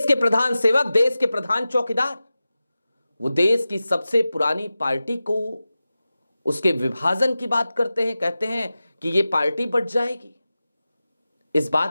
के प्रधान सेवक, देश के प्रधान चौकीदार, वो देश की सबसे पुरानी पार्टी को उसके विभाजन की बात करते हैं, कहते हैं कि ये पार्टी बट जाएगी। इस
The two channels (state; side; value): inverted; both; correlation -0.94